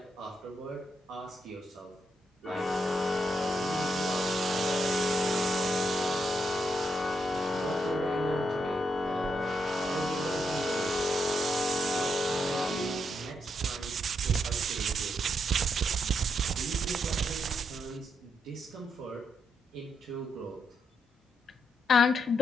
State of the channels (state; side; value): normal; both; correlation 0.80